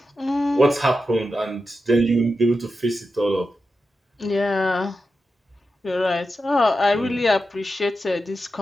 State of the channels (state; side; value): normal; both; correlation 0.90